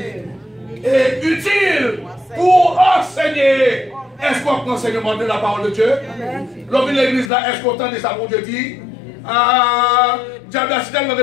et utile pour enseigner. Est-ce qu'on prend enseignement de la parole de Dieu? L'homme de l'église là, est-ce qu'on entend de ça pour Dieu dit? Ah, diable a cité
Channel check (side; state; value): right; drops out; at 7.3 s